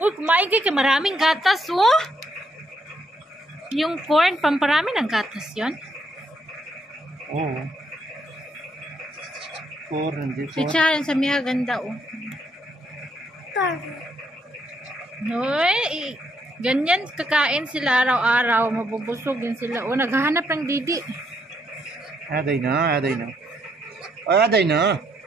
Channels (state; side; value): normal; both; correlation 0.74